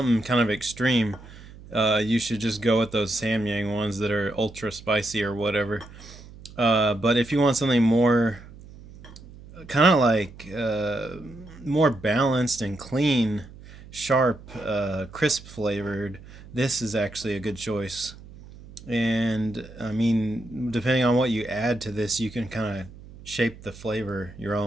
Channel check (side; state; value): right; noise; hum, 18 dB below the sound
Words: kind of extreme, you should just go with those Samyang ones that are ultra spicy or whatever. But if you want something more kind of like more balanced and clean, sharp, crisp flavored, this is actually a good choice. And I mean, depending on what you add to this, you can kind of shape the flavor your